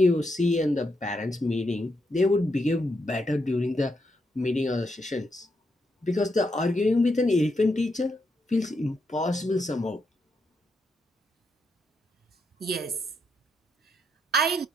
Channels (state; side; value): normal; both; correlation 0.81